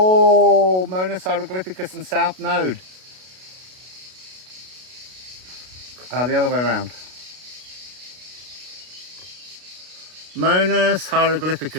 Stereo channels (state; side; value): late; left; 32 ms